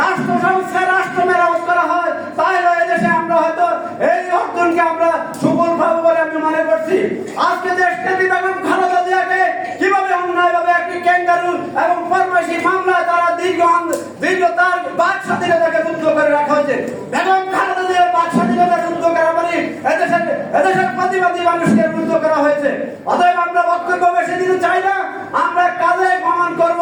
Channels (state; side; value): identical; both; correlation 1.00